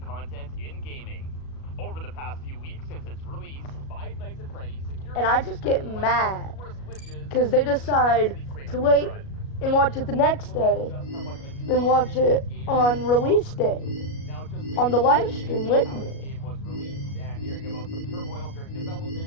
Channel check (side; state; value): right; late; 37 ms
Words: content in gaming. Over the past few weeks since its release, Five Nights at Freddy's security And I just get mad because they decide to wait and watch it the next day, then watch it on release day on the live stream with me. The game was released and hearing about some turmoil during